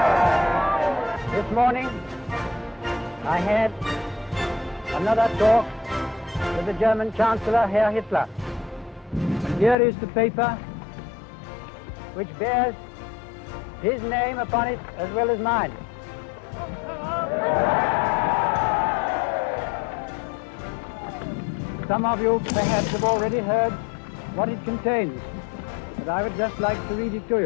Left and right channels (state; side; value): drops out; right; at 9.8 s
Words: This morning, I had another talk with the German Chancellor, Herr Hitler. And here is the paper which bears his name upon it as well as mine. Some of you perhaps have already heard what it contains, but I would just like to read it to